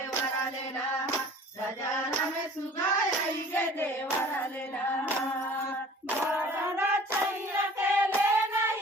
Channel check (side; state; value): both; normal; correlation 0.48